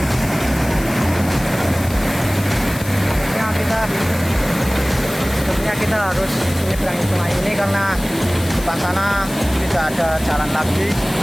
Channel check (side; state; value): left; noise; hiss, 15 dB below the sound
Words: Sebenarnya kita harus menyeberangi sungai ini karena depan sana tidak ada jalan lagi.